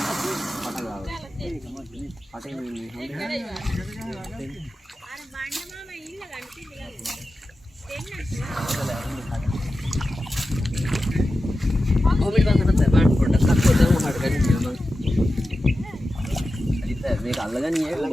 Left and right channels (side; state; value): both; normal; correlation 0.93